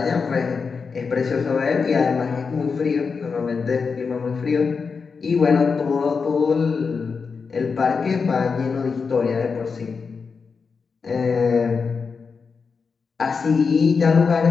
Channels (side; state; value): right; quieter; 5.2 dB